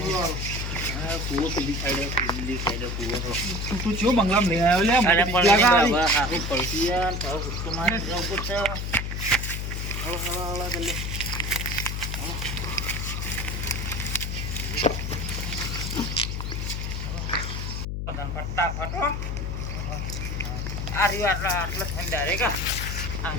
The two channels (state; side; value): noise; left; hum, 3 dB below the sound